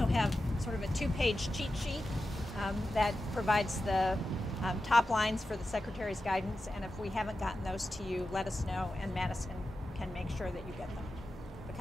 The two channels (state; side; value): normal; both; correlation 0.92